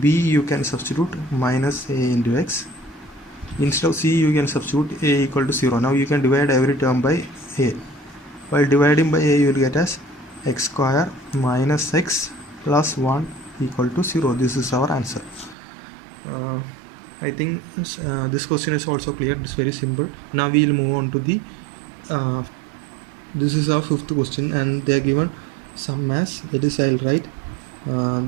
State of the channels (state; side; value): drops out; left; at 15.6 s